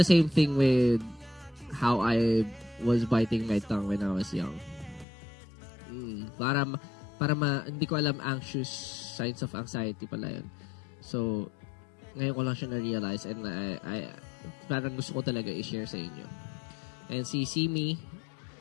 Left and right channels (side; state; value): right; drops out; at 5.1 s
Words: same thing with how I was biting my tongue when I was young. Hindi ko alam, signs of anxiety pala yun. So, ngayon ko lang siya na-realize and I parang gusto ko talaga i-share sa inyo. And See Me,